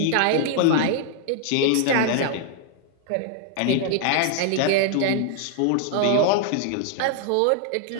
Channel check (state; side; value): different; both; correlation 0.00